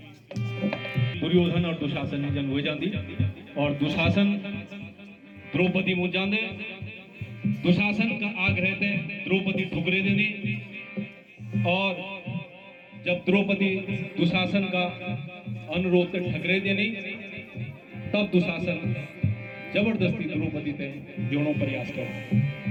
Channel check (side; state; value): both; identical; correlation 1.00